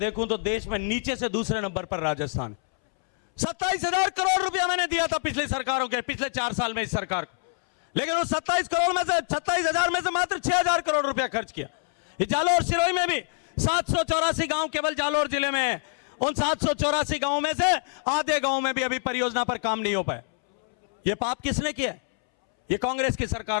तो देश में नीचे से दूसरे नंबर पर राजस्थान। 27,000 करोड़ रुपया मैंने दिया था पिछली सरकारों के, पिछले 4 साल में इस सरकार को, लेकिन उस 27 करोड़ में से 27,000 में से मात्र 6,000 करोड़ रुपया खर्च किया। ये जालोर सिरोही में भी 784 गांव केवल जालोर जिले में है। उन 784 गांवों में से आधे गांव में भी अभी परियोजना पर काम नहीं हो पाया। ये पाप किसने किया? ये कांग्रेस की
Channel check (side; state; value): right; silent; 61 dB below the other